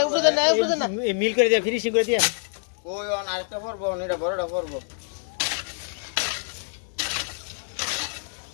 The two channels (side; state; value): right; silent; digital silence